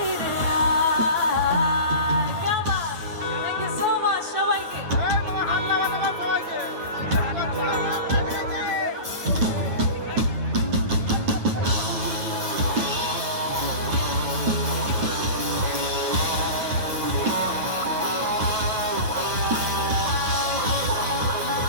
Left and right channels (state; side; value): late; left; 9.3 ms